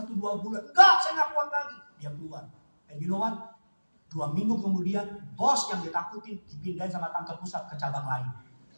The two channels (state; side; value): inverted; both; correlation -1.00